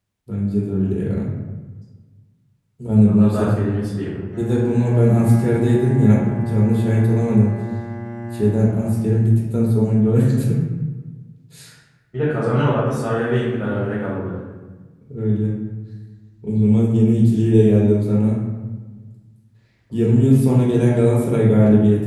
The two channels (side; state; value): both; identical; correlation 1.00